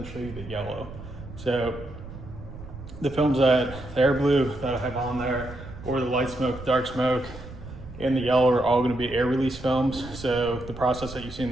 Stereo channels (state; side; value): noise; right; rumble, 14 dB below the sound